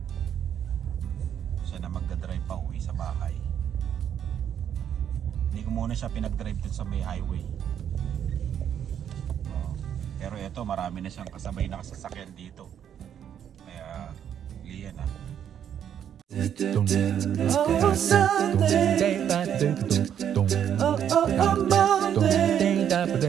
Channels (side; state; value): left; quieter; 9.2 dB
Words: Siya na magdadrive pa uwi sa bahay. Hindi ko muna siya pinag-drive dun sa may highway. Pero eto, marami na siyang kasabay na kasasakyan dito. Kaya Lian Oh, Sunday. Oh, Monday. Oh,